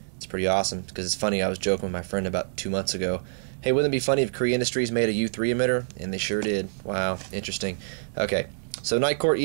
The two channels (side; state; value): left; silent; digital silence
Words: It's pretty awesome because it's funny, I was joking with my friend about 2 months ago. Hey, wouldn't it be funny if Korea Industries made a U3 emitter? And they sure did. Wow, interesting. Okay, so NITECORE